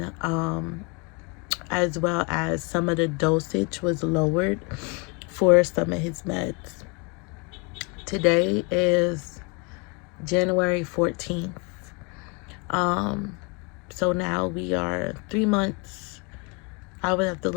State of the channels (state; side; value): quieter; right; 31.4 dB